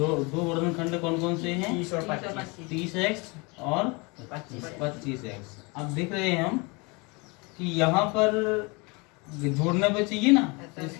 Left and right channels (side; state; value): right; quieter; 28.3 dB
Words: गुणनखंड कौन कौन से हैं 30x और 25x। अब देख रहे हैं हम कि यहाँ पर जोड़ने पे चाहिए ना तो